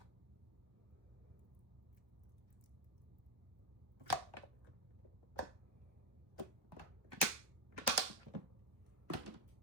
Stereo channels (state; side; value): late; left; 1.2 ms